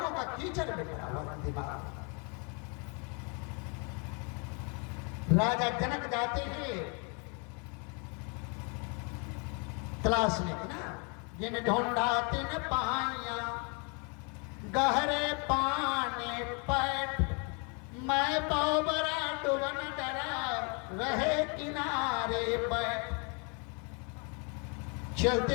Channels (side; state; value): right; quieter; 35.2 dB